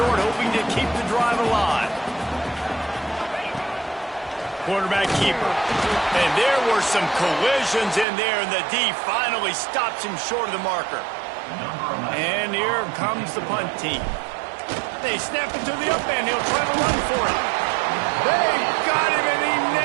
hoping to keep the drive alive. Quarterback keeper. And there were some collisions in there, and the D finally stops him short of the marker. And here comes the punt team. They snap it to the up end. He'll try to run for it. They got him, and he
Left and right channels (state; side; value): drops out; left; at 8.1 s